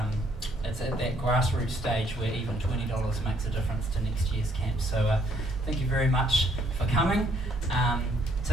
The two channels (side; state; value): both; normal; correlation 0.66